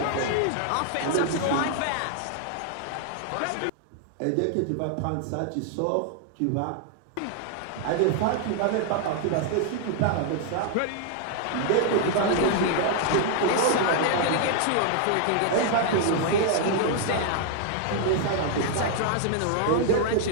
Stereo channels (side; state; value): both; different; correlation 0.00